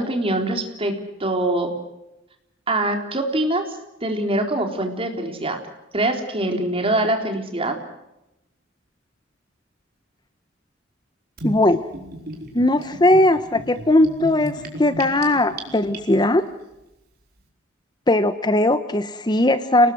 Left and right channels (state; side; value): normal; both; correlation 0.51